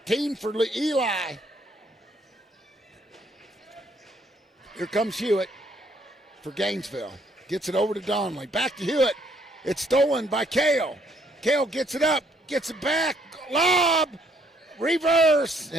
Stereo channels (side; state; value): both; normal; correlation 0.67